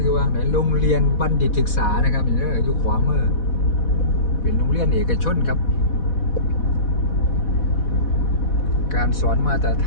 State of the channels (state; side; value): late; right; 4.1 ms